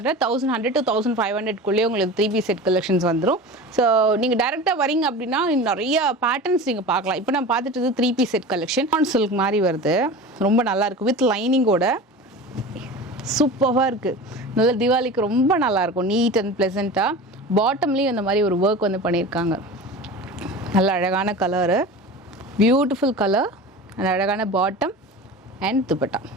1100 to 1500 உங்களுக்கு 3 piece செட் கலெக்ஷன்ஸ் வந்துடும். ஸோ நீங்கள் டேரெக்டாக வரீங்க அப்படின்னா நிறைய பேட்டர்ன்ஸ் நீங்கள் பார்க்கலாம். இப்போ நான் பார்த்துட்டு 3 piece set collection on silk மாதிரி வருது, ரொம்ப நல்லாயிருக்கு வித் லைனிங்கோட, சூப்பராக இருக்குது. நல்ல தீபாவளிக்கு ரொம்ப நல்லாயிருக்கும், நீட் அண்ட் ப்ளசண்ட்டாக. பாட்டம்லேயும் இந்த மாதிரி ஒரு ஒர்க் வந்து பண்ணியிருக்காங்க. நல்ல அழகான கலரு, பியூட்டிஃபுல் கலர், அந்த அழகான பாட்டம் அண்ட் துப்பட்டா.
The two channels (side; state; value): both; normal; correlation 0.33